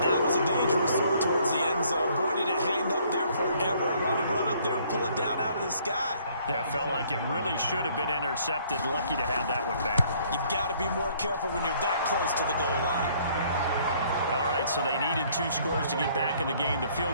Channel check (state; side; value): inverted; both; correlation -0.62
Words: That was a dangerous throw towards the end zone. Boy, did it hang up there forever. Wanted to run up there and pull it down out of the sky. Yeah, it felt like it really should have been intercepted. Lucky to have that one back. You've got to be more careful when you're that close to the goal line. All right, so they needed 2 scores to get back in the game. The